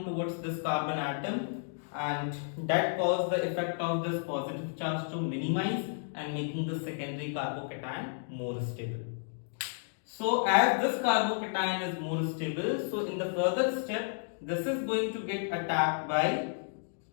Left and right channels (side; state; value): right; silent; digital silence